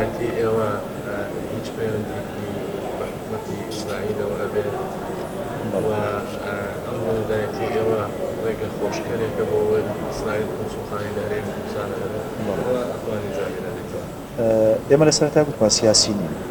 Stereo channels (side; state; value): both; identical; correlation 1.00